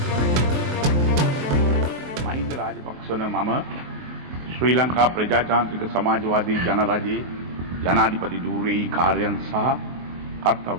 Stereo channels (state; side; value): late; left; 23 ms